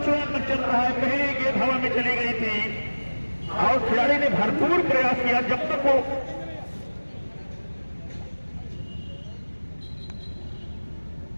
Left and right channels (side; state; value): both; inverted; correlation -1.00